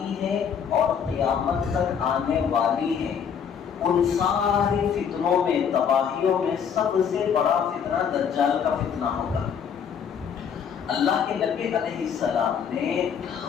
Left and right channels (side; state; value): right; quieter; 7.4 dB